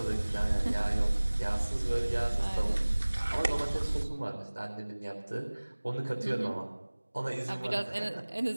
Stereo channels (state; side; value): inverted; both; correlation -1.00